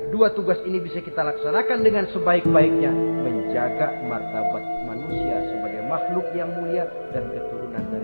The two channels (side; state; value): both; inverted; correlation -1.00